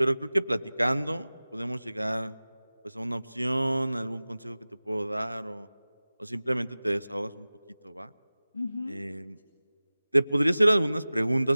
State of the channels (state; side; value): inverted; both; correlation -0.98